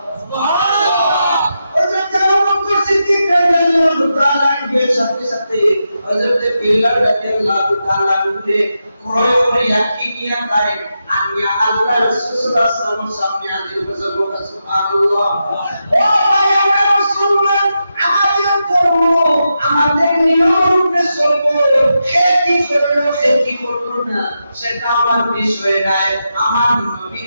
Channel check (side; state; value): both; inverted; correlation -0.87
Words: সুবহানাল্লাহ। সাথে সাথে হযরত বিলাল রাদিয়াল্লাহু তাআলা কে ক্রয় করে ইয়াকি নিয়ে তাই আনিয়া আল্লাহ রাসূল সাল্লাল্লাহু আলাইহি ওয়াসাল্লাম সামনে হাজির করেছে। সুবহানাল্লাহ। ও ভাই, আমরা মুসলমান, আমাদের ধর্ম, আমাদের নিয়মে চলবো, খেতি করব না, সেটা আমার বিষয় নাই। আমার